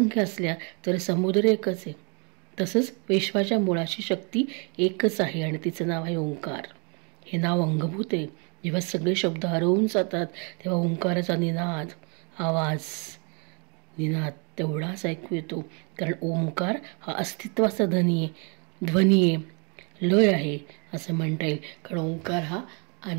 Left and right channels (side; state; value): left; quieter; 35.1 dB